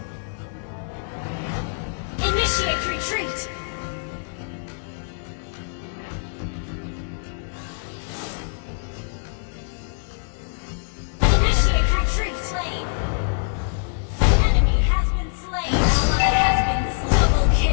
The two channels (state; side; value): silent; right; digital silence